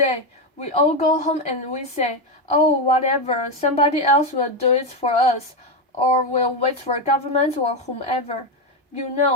we all go home and we say, oh, whatever, somebody else will do it for us, or we'll wait for government or whomever. You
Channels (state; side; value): normal; both; correlation 0.09